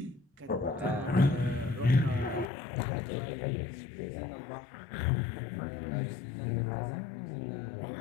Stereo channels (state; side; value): drops out; right; at 2.5 s